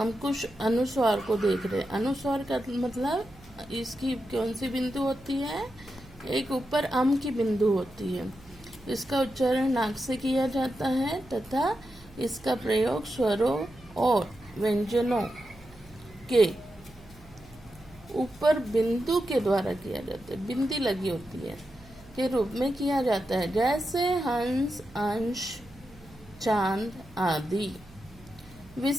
कुछ अनुस्वार को देख रहे हैं। अनुस्वार का मतलब इसकी कौन सी बिंदु होती है? एक ऊपर अम की बिंदु होती है। इसका उच्चारण नाक से किया जाता है तथा इसका प्रयोग स्वरों और व्यंजनों के ऊपर बिंदु के द्वारा किया जाता है, बिंदी लगी होती है, के रूप में किया जाता है, जैसे हंस, अंश, चांद आदि।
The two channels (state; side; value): noise; right; hum, 23 dB below the sound